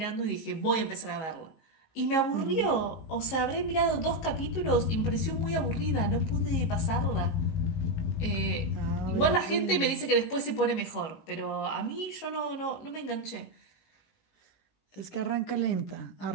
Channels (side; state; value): right; late; 19 ms